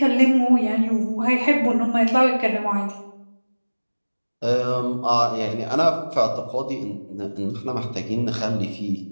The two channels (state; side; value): inverted; both; correlation -1.00